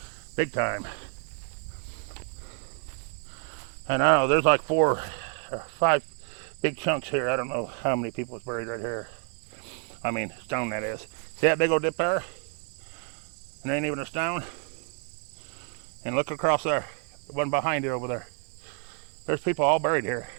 Big time. And I don't know, there's like 4 or 5 big chunks here. I don't know how many people is buried right here. I mean, stone that is. See that big old dip there? And there ain't even a stone. And look across there, the one behind it over there. There's people all buried here.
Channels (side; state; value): left; quieter; 39.0 dB